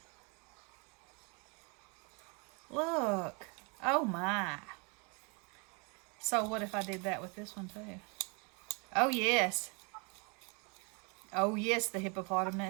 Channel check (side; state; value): left; quieter; 32.9 dB